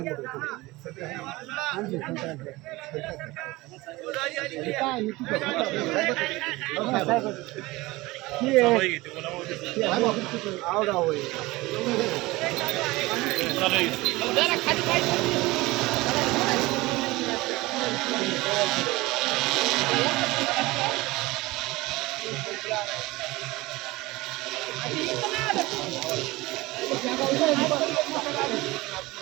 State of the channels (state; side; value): quieter; left; 20.8 dB